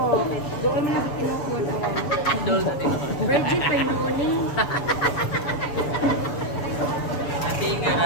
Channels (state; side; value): late; right; 7.2 ms